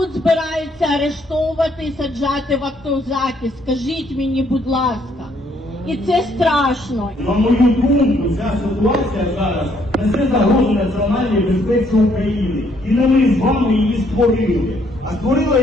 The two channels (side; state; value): both; normal; correlation 0.68